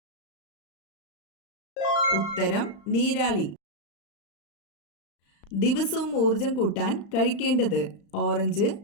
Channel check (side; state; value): right; late; 35 ms